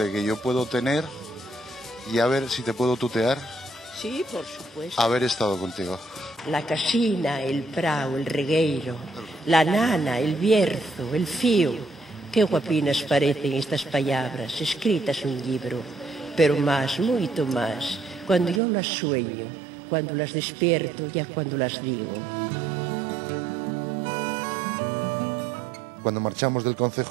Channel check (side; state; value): left; drops out; at 18.6 s